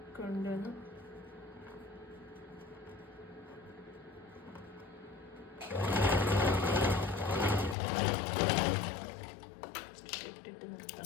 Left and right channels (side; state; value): right; drops out; at 7.8 s